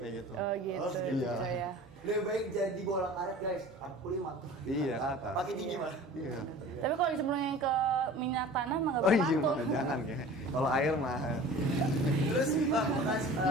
gitu. Oh gitu, iya. cucok ya. Lebih baik jadi bola karet guys. Aku 5 tuh. Iya, ke atas. Pakai tinggi mah. Iya. Tapi kalau disembunyiin ke minyak tanah mah nggak Oh iya, bermantul. jangan kayak. Kalau air mah. Terus bekas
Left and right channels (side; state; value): both; normal; correlation 0.41